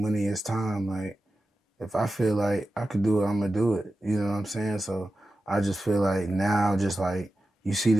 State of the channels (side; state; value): both; normal; correlation 0.93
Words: is time. Like if I feel like I could do it, I'm gonna do it. You know what I'm saying? So I just feel like now, just like you see